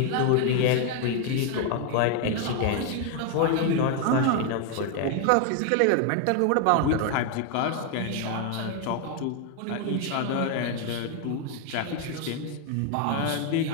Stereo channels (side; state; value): both; different; correlation 0.01